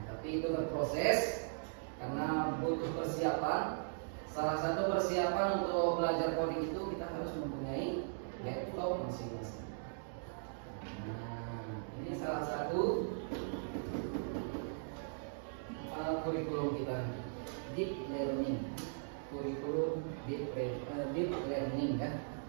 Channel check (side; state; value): left; silent; digital silence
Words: tapi itu berproses karena butuh persiapan. Salah satu persiapan untuk belajar coding itu kita harus mempunyai laptop masing-masing. Nah, ini salah satu kurikulum kita, deep learning, kurikulum deep learning kan.